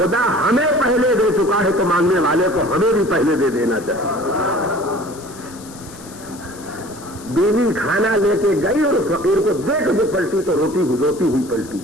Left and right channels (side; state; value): left; noise; hiss, 19 dB below the sound